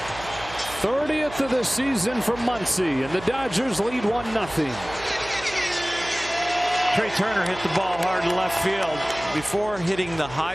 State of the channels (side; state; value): right; noise; hum, 15 dB below the sound